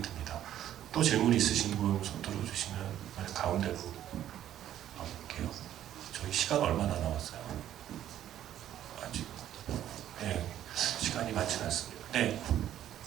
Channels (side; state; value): left; quieter; 11.5 dB